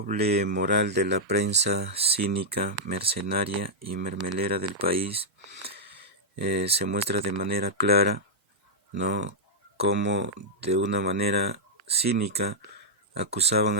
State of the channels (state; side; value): normal; both; correlation -0.07